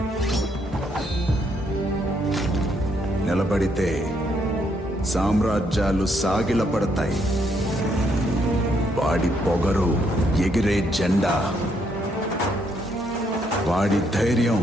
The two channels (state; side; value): normal; both; correlation 0.73